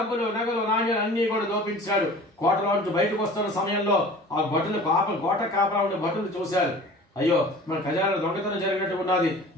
నగలు, నాణ్యాలు అన్ని కూడా దోపించాడు. కోటలో నుంచి బయటకు వస్తున్న సమయంలో ఆ భటులు కోట కాపలా ఉండే భటులు చూశారు. అయ్యో, మన ఖజానా దొంగతనం జరిగినట్టు ఉన్నది,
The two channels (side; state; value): both; normal; correlation 0.43